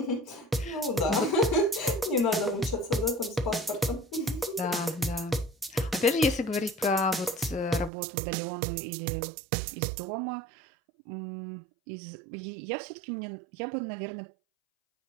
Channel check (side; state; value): left; drops out; at 7.9 s